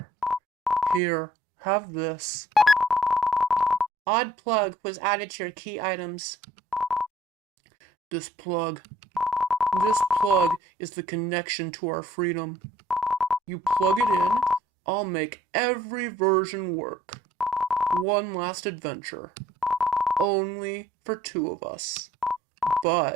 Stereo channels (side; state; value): both; normal; correlation 0.60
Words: Here, have this. Odd plug was added to your key items. This plug is the connection to our freedom. You plug it in, I'll make every version work. One last adventure. Only for 2 of us.